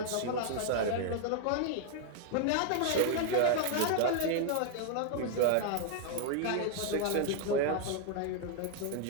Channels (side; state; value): both; different; correlation 0.00